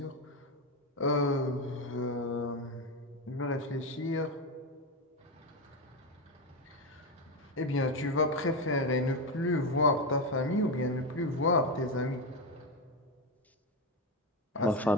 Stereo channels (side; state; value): both; normal; correlation 0.12